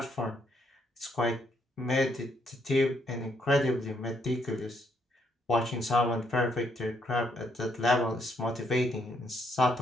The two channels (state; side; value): normal; both; correlation 0.73